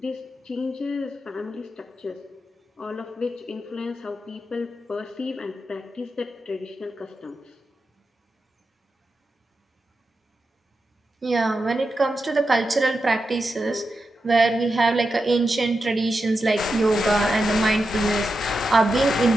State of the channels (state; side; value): normal; both; correlation 0.89